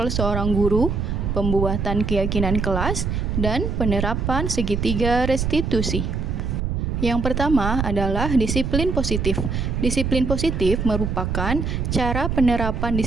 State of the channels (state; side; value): noise; right; rumble, 1 dB below the sound